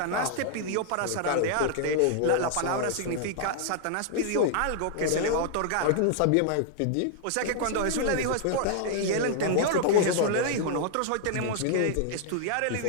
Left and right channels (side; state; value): both; different; correlation 0.00